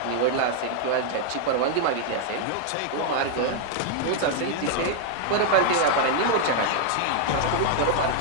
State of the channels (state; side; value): different; both; correlation 0.00